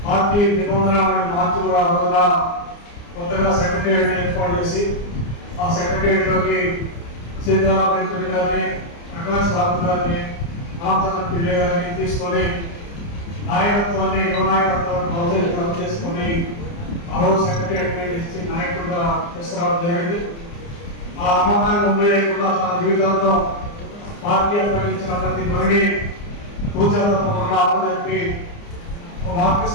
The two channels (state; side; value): late; right; 29 ms